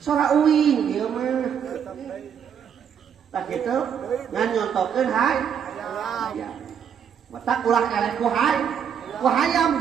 sora uing dieu mah tah kitu ngan nyontokeun hayang matak ulah eleh ku hayam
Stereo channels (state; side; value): quieter; left; 8.0 dB